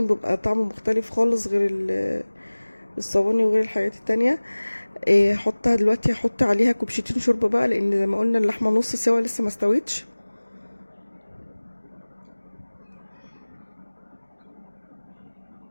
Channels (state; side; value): inverted; both; correlation -1.00